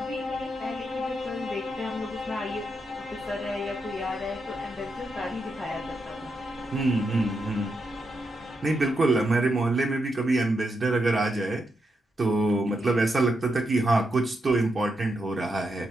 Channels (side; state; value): both; normal; correlation 0.83